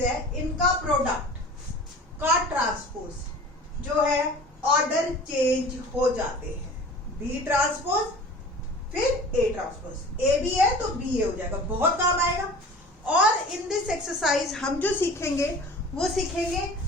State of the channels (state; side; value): normal; both; correlation 0.41